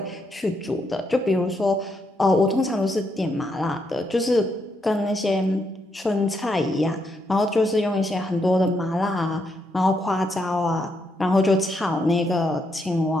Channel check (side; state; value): both; normal; correlation 0.78